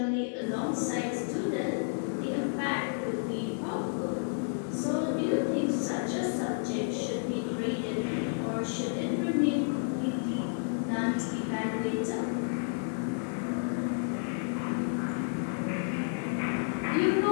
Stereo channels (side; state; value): right; silent; digital silence